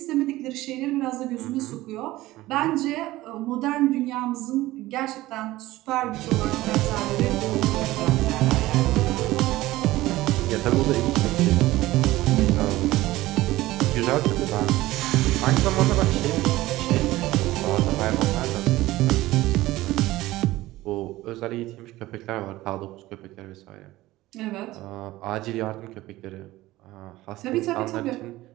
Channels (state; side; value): quieter; left; 17.3 dB